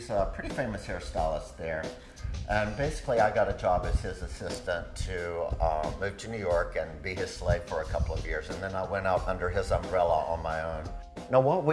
a pretty famous hairstylist there. And basically I got a job as his assistant to move to New York and be his slave for a couple of years. And then I went out under his umbrella on my own. Now what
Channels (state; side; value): identical; both; correlation 1.00